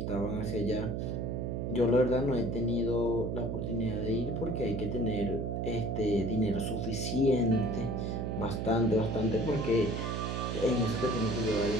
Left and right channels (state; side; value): noise; right; hum, 2 dB below the sound